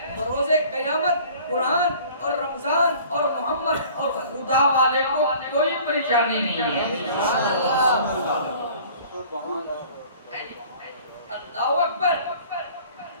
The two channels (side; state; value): both; inverted; correlation -0.49